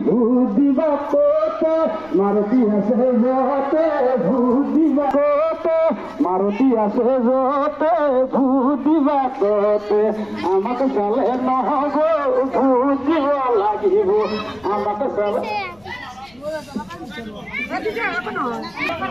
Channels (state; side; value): noise; left; rumble, 28 dB below the sound